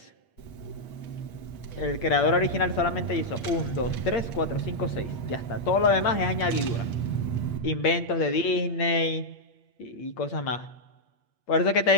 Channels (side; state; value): right; late; 8.6 ms